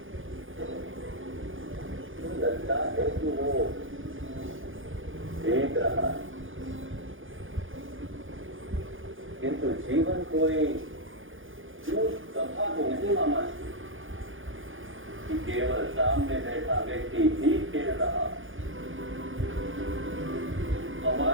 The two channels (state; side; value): late; left; 0.58 ms